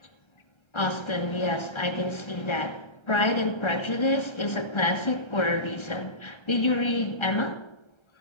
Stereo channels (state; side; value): late; right; 1.3 ms